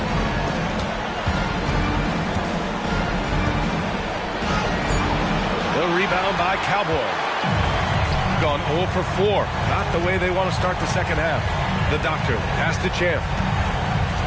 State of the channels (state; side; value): identical; both; correlation 1.00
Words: The rebound by Cowboy. Gone 0 for 4. Not the way they want to start the second half. The doctor pass to Champ.